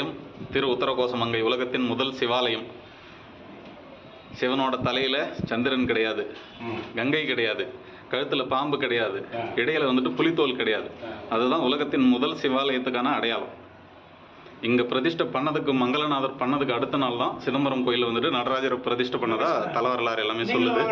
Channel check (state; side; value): identical; both; correlation 1.00